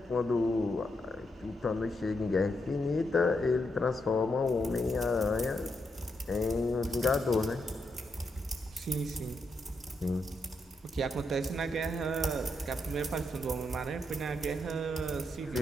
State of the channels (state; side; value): normal; both; correlation 0.82